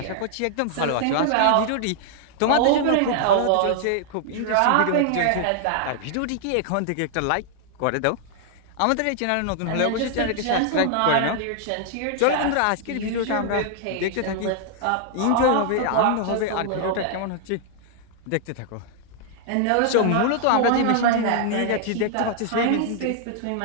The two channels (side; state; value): both; different; correlation 0.00